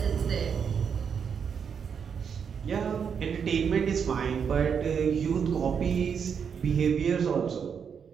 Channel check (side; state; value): left; quieter; 6.9 dB